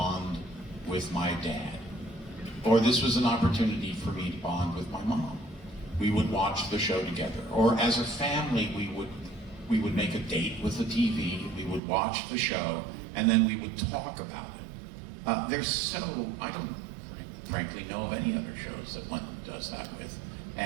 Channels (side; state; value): left; drops out; at 11.8 s